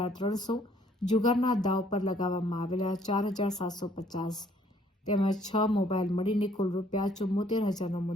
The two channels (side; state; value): both; normal; correlation 0.62